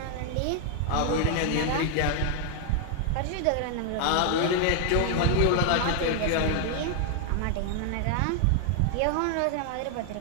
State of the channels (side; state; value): both; different; correlation 0.00